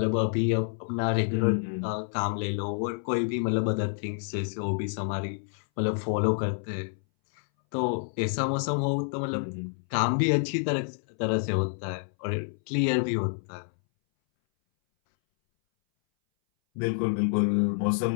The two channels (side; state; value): right; silent; 59 dB below the other